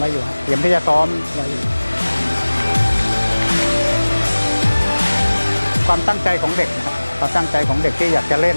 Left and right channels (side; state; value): both; inverted; correlation -1.00